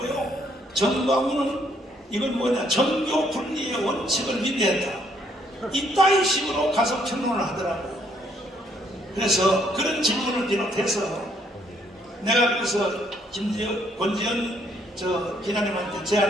정가훈은 이건 뭐냐, 정교 분리의 원칙을 위배했다. 이따위 식으로 가서 평론을 하더라고요. 그래서 그런 질문을 비롯해서 내가 그래서 권지연 기자님한테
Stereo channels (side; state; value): both; normal; correlation 0.69